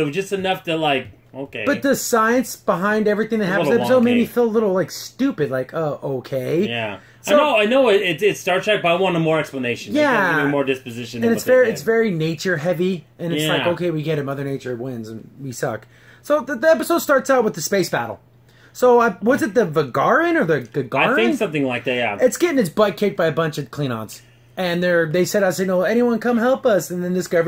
was just enough to okay. But the science behind everything that happens in the episode made me feel a little stupid. Okay. Yeah. So, I know. It's Star Trek, but I wanted more explanation. Yeah. Give me more disposition. And it's very nature heavy, and it's okay, we get it. Mother Nature wins, and we suck. So the episode starts out with the space battle. So was it the Vigaran or the Gagarin? I think something like that. Yeah. It's getting its butt kicked by a bunch of Klingons. And they said, anyone come help us. And then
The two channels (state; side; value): identical; both; correlation 1.00